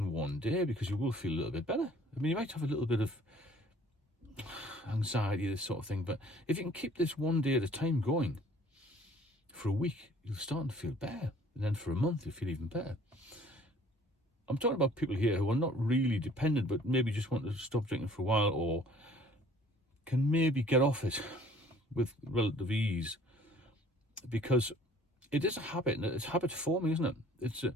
one day, because you will feel a little bit better. I mean, you might have a little bit of anxiety, this sort of thing, but if you can keep this one day at a time going for a week, you'll start to feel better. And then for a month, you'll feel even better. I'm talking about people here who are not really dependent, but maybe just want to stop drinking for a while, or can maybe get off it with relative ease, because it is a habit, and it's habit forming, isn't it?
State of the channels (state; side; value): normal; both; correlation 0.54